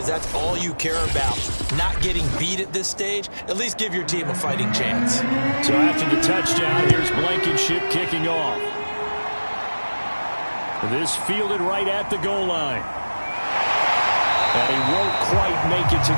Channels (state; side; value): inverted; both; correlation -1.00